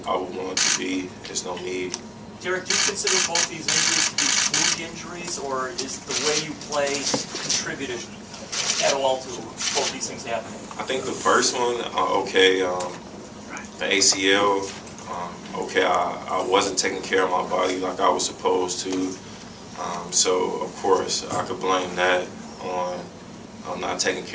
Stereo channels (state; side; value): identical; both; correlation 1.00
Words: I would want it to be, there's no need. Derrick, do you consider both these injuries to be fluke injuries, or is the way you play contributed at all to both these things happening? I think the first one, the ACL, I wasn't taking care of my body like I was supposed to. So, of course, I could blame that on not taking